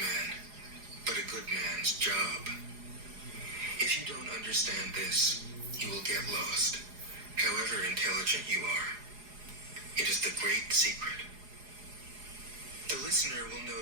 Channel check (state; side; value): late; left; 4.8 ms